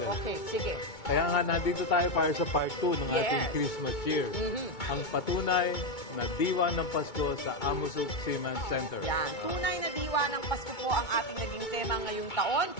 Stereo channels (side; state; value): right; late; 2.2 ms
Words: Okay, sige. Kaya nga, nandito tayo para sa part 2 ng ating Christmas cheer. Ang patunay na diwa ng Pasko sa Amos Soup Seaman Center. Yan. Tunay na diwa ng Pasko po ang ating naging tema ngayong taon.